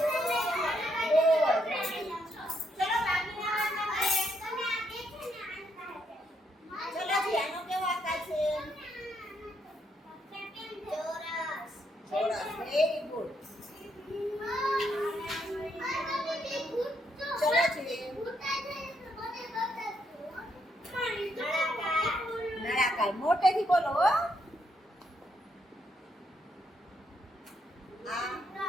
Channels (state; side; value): normal; both; correlation 0.76